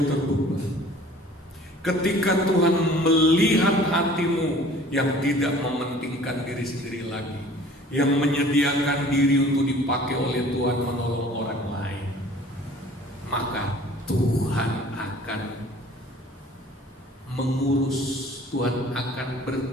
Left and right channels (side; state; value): both; normal; correlation 0.49